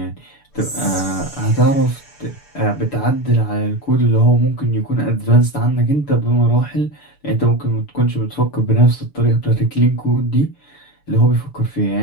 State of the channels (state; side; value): late; right; 6.9 ms